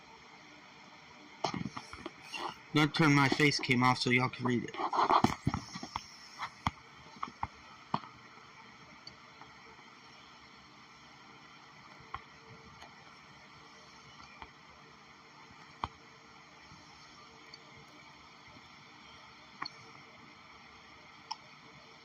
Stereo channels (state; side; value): identical; both; correlation 1.00